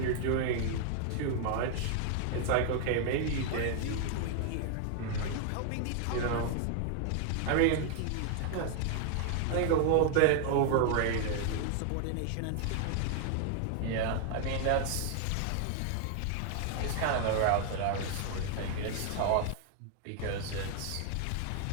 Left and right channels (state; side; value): different; both; correlation 0.00